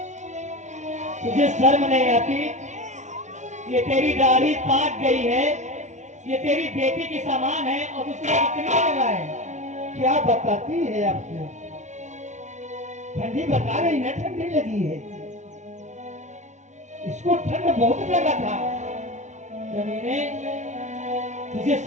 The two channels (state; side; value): late; left; 0.34 ms